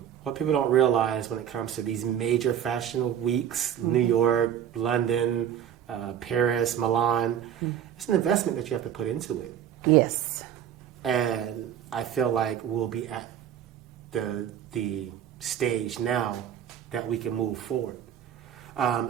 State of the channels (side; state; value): left; quieter; 9.7 dB